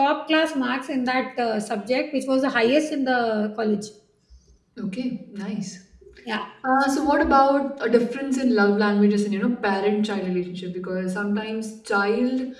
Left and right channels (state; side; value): identical; both; correlation 1.00